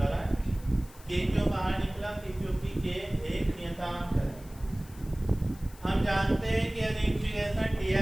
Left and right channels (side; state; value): left; noise; hiss, 22 dB below the sound